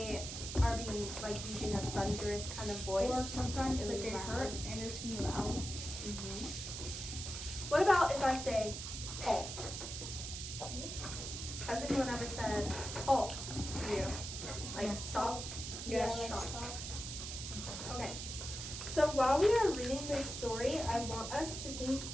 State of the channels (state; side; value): noise; right; hiss, 7 dB below the sound